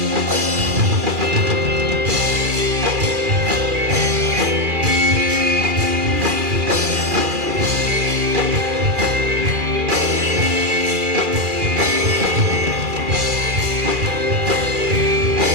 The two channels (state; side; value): late; left; 2.4 ms